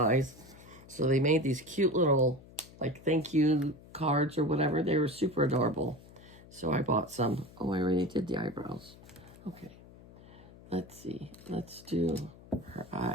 So they made these cute little, like, thank you cards or whatever. They were super adorable. So I bought some. Oh, I already did the eyebrows. Okay. Let's see. Let's do her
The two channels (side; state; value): left; noise; hum, 21 dB below the sound